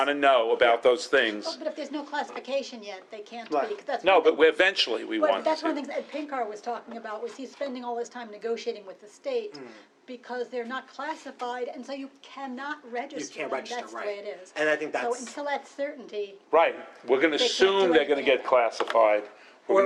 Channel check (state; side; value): identical; both; correlation 1.00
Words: to know about those Oh, things. but if there's no classification yet, they can't Right. be, 'cause that's No, one but thing- eventually we But want that's one of to. the things Ed Pinkar was talking about, was he's spending all his time negotiating with the state because they're not classified, and so you cannot register them, register, that's the way right. it is. And I think So that's- until that's certainty, Right, we're going to They can't assume do they're going to anything. get classified. We're Or